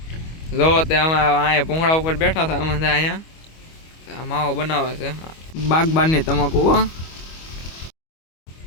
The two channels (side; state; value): right; late; 25 ms